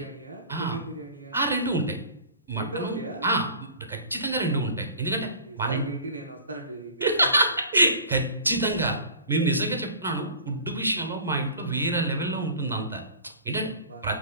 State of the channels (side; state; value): both; inverted; correlation -0.43